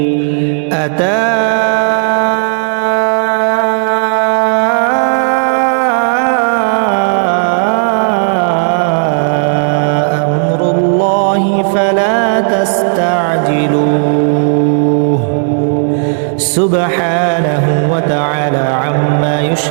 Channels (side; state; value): left; silent; digital silence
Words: أتى أمر الله فلا تستعجلوه سبحانه وتعالى عما